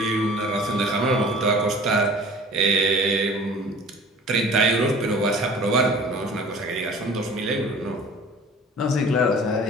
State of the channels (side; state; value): both; normal; correlation 0.45